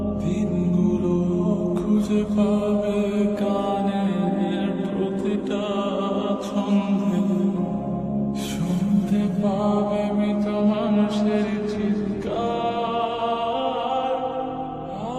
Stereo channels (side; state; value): both; identical; correlation 1.00